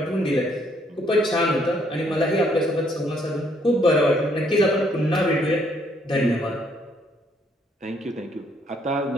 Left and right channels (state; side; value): normal; both; correlation 0.68